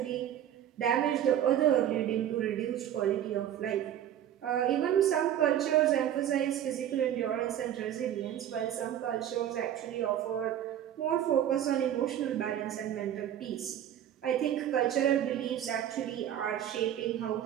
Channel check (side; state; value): left; quieter; 10.8 dB